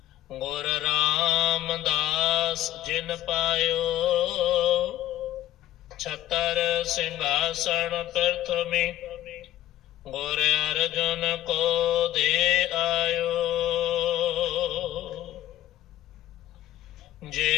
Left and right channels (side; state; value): right; quieter; 13.6 dB